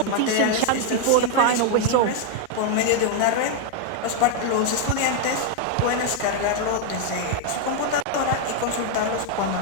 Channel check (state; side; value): different; both; correlation 0.00